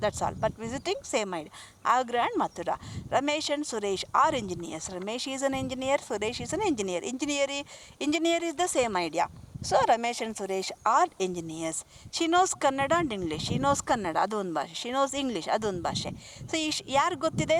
that's all, but visiting same idea. Agra and Mathura. Ramesh and Suresh are engineers. Ramesh is an engineer, Suresh is an engineer. Engineer is the same idea. So Ramesh and Suresh are engineers. She knows Kannada and English. She knows Kannada, ಅದೊಂದು ಭಾಷೆ. She nose English, ಅದೊಂದು ಭಾಷೆ. So ಯಾರು ಗೊತ್ತಿದೆ,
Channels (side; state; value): both; identical; correlation 1.00